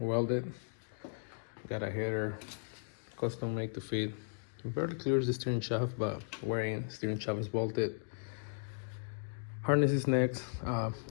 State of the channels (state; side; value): silent; right; digital silence